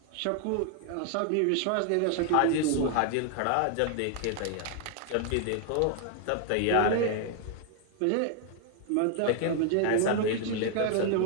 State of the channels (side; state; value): both; different; correlation 0.00